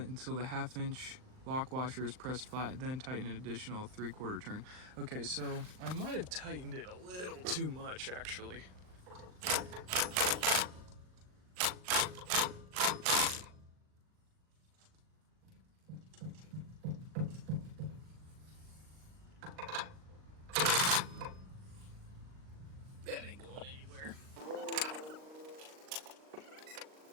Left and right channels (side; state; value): left; late; 39 ms